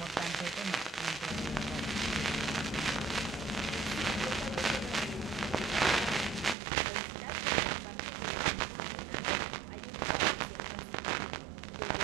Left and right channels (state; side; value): drops out; left; at 6.6 s